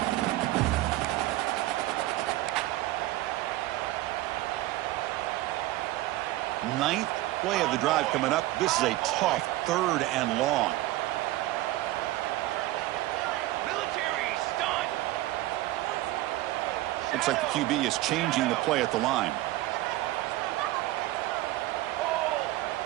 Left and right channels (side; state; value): left; quieter; 17.0 dB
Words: Ninth play of the drive coming up. This is a tough 3rd and long. Looks like the QB is changing the play at the line.